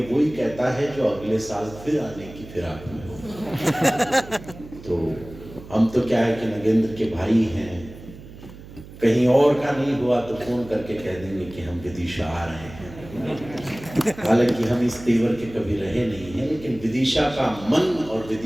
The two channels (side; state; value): right; noise; hum, 17 dB below the sound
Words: वही कहता है जो अगले साल फिर आने की फिराक में हो। तो हम तो क्या है कि नगेंद्र के भाई हैं, कहीं और का नहीं हुआ तो फोन करके कह देंगे कि हम विदिशा आ रहे हैं। हालांकि हम इस तेवर के कभी रहे नहीं हैं, लेकिन विदिशा का मन और